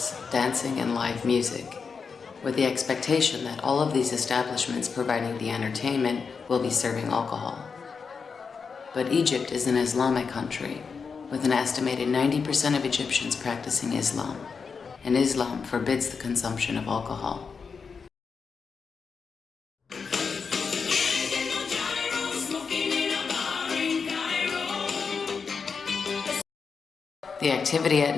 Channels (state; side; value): quieter; right; 5.5 dB